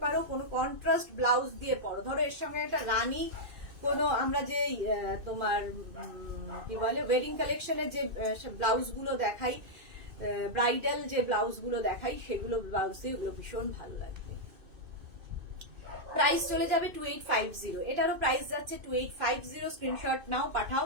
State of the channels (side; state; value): left; late; 2.6 ms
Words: পারো, কোনো কন্ট্রাস্ট ব্লাউজ দিয়ে পরো। ধরো এর সঙ্গে একটা রানী কোনো আমরা যে তোমার কি বলে ওয়েডিং কালেকশনের যে ব্লাউজ গুলো দেখাই, ব্রাইডাল যে ব্লাউজ গুলো দেখাই, সেগুলো ব্লাউজ দিয়ে ওগুলো ভীষণ ভালো লাগবে। প্রাইস চলে যাবে 2850। এটারও প্রাইস যাচ্ছে 2850। স্ক্রিনশট নাও, পাঠাও।